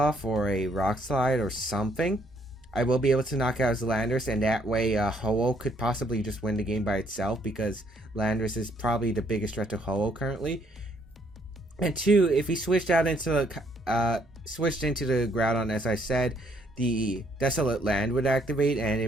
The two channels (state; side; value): normal; both; correlation 0.68